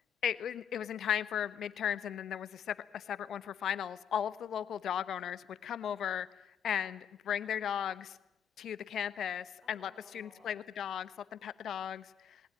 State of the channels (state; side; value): quieter; right; 8.7 dB